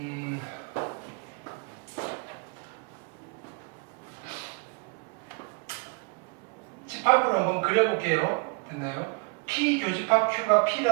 집합으로 한번 그려볼게요. 됐나요? P 교집합 Q가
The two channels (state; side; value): quieter; left; 33.1 dB